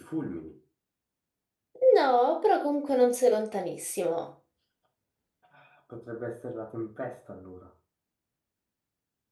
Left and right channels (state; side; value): identical; both; correlation 1.00